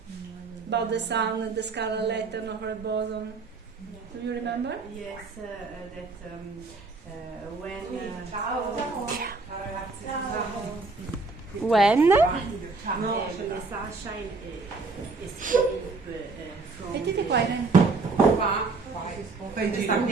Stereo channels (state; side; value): quieter; left; 3.9 dB